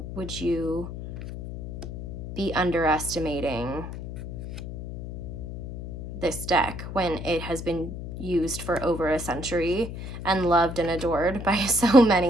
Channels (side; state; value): left; noise; hum, 8 dB below the sound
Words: would you be underestimating this deck when it has been used for over a century and loved and adored by so